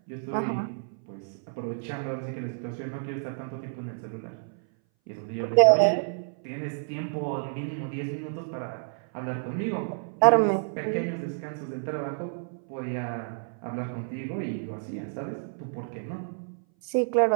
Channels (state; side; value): silent; left; 58 dB below the other